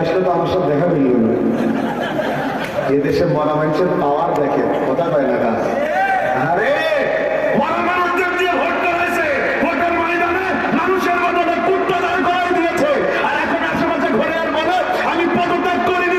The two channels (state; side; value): noise; right; hum, 24 dB below the sound